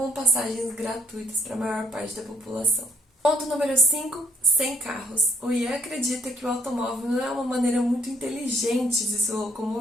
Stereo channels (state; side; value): normal; both; correlation 0.68